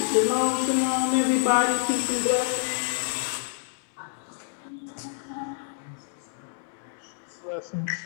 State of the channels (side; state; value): right; silent; digital silence